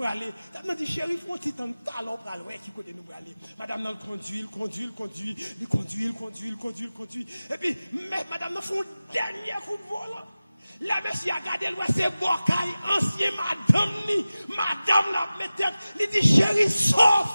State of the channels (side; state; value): both; inverted; correlation -0.97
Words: aller? Madame a dit, chérie, il faut un petit temps de talent pour aller, qui côté nous pour aller? Madame, non, conduit. Et puis, mais madame, non, fait un dernier coup de volant. La monsieur a gardé le c'est Bocaille, ancien madame la mettait, il dit chérie,